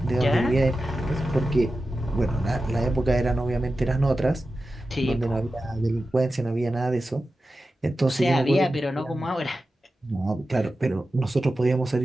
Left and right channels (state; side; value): normal; both; correlation 0.93